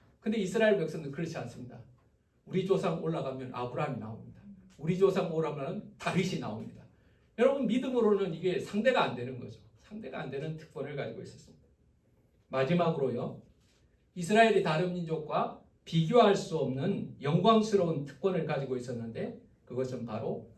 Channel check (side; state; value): both; identical; correlation 1.00